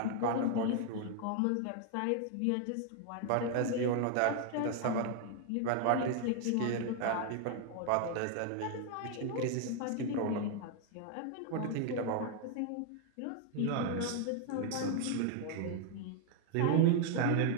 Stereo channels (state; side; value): different; both; correlation 0.00